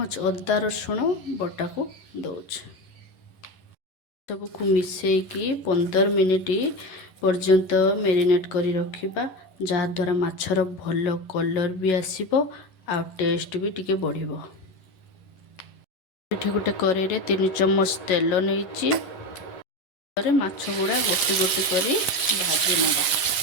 अदा रसुण बटा को दउची। सबको मिसेकी 15 मिनिट पर्यंत मैरिनेट करी रखिबा, जहा द्वारा माछर भल कलर भी आसीबो आ टेस्ट भी टिके बढ़िबो। एठी गोटे करेई रे 3 चम्मच तेल नेइची, रे माछ गुडा गोटी गोटी करी भाजी नबा।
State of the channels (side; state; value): right; late; 11 ms